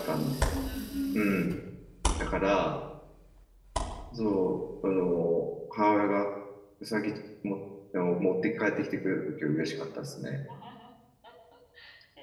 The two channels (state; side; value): identical; both; correlation 1.00